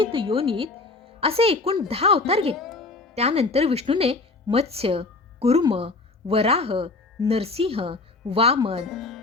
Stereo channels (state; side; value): quieter; right; 3.6 dB